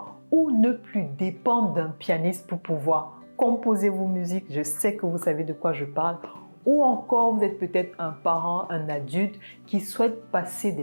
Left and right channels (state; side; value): inverted; both; correlation -1.00